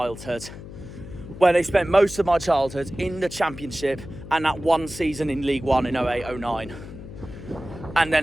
where they spent most of my childhood in the Championship and that one season in League One in 08-09. And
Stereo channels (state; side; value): noise; left; hum, 13 dB below the sound